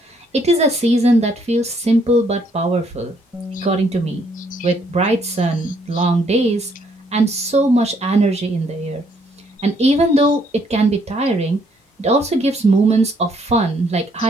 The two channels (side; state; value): both; normal; correlation 0.68